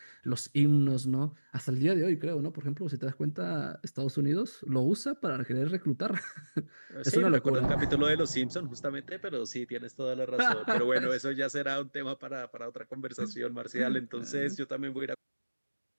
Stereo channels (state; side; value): inverted; both; correlation -1.00